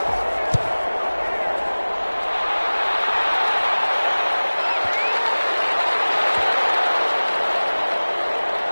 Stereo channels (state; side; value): inverted; both; correlation -1.00